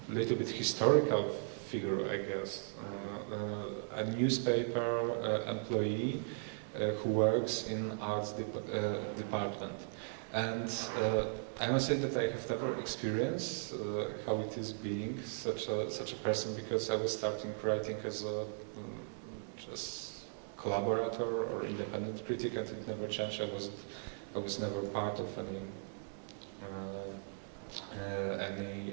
little bit historical figure, I guess, a newspaper employee who works in arts department. And I must say that I have never experienced how it is being such a person, because I was starting writing as a just collaborator or independent critic, and it never changed. I was never part of any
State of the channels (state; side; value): silent; left; digital silence